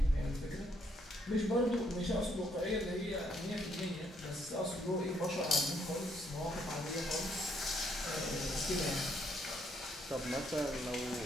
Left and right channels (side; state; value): both; normal; correlation 0.71